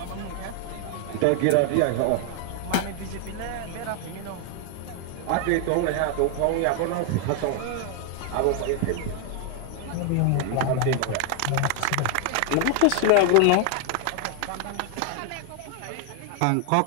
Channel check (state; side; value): different; both; correlation 0.00